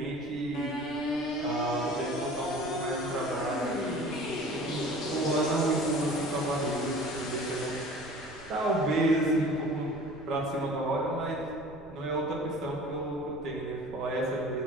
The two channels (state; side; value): noise; right; rumble, 21 dB below the sound